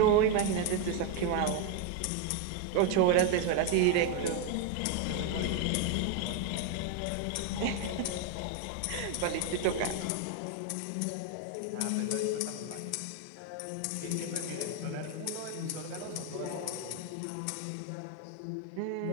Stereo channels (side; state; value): both; different; correlation 0.01